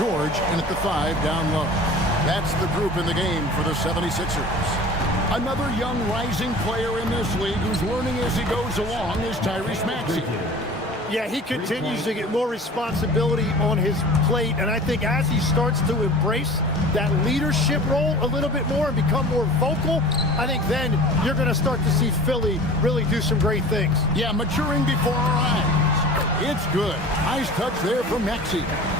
in at the 5 down low. That's the group in the game for the 76ers. Another young rising player in this league who's learning as he goes along is Tyrese Maxey. Yeah, he continues to get more responsibility on his plate, and I think as he starts to embrace that leadership role a little bit more and become more vocal, I think then you're going to start to see Philly really do some great things. Yeah, maturing before our eyes. It's good. Nice touch there from Maxey.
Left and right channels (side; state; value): both; normal; correlation 0.41